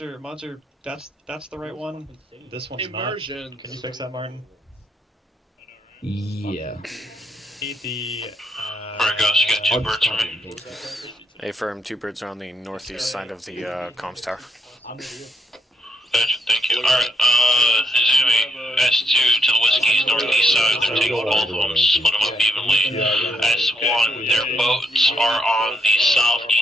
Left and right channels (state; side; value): normal; both; correlation 0.76